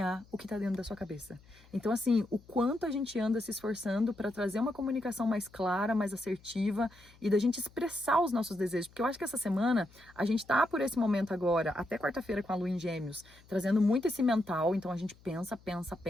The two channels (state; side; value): noise; left; hum, 26 dB below the sound